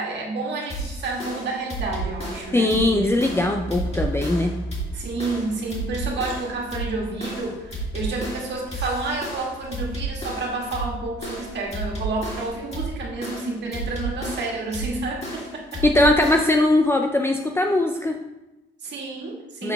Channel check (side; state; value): both; normal; correlation 0.61